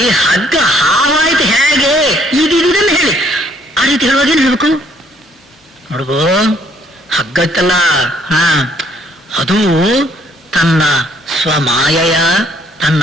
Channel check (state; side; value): normal; both; correlation 0.65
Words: ಹಗ್ಗ ಹಾವಾಯ್ತು ಹೇಗೆ ಇದನ್ನು ಹೇಳಿ. ಆ ರೀತಿ ಹೇಳುವಾಗ ಏನ್ ಹೇಳ್ಬೇಕು? ನೋಡ್ಬೋ, ಹಗ್ಗ ಇತ್ತಲ್ಲ, ಅದು ತನ್ನ ಸ್ವಮಾಯೆಯ, ತನ್ನ